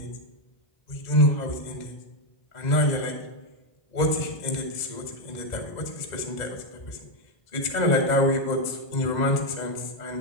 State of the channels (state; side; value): late; right; 2.0 ms